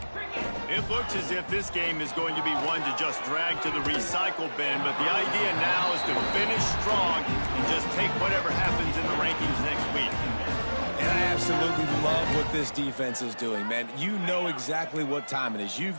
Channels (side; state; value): both; inverted; correlation -1.00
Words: It looks as if this game is going to be one to just drag to the recycle bin, but the idea now is to finish strong and just take whatever happens in the rankings next week. And I absolutely love what this defense is doing, man. You know exactly what time it is. You've